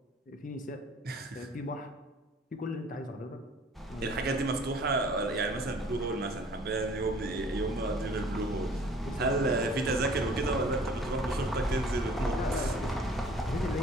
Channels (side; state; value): both; normal; correlation 0.52